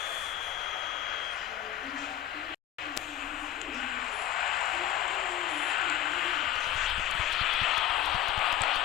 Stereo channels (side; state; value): right; quieter; 12.3 dB